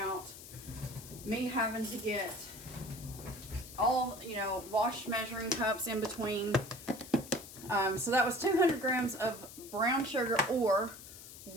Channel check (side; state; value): left; noise; hiss, 15 dB below the sound